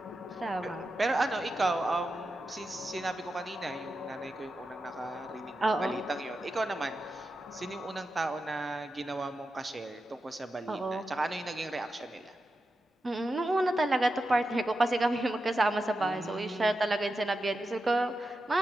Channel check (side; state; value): both; normal; correlation 0.89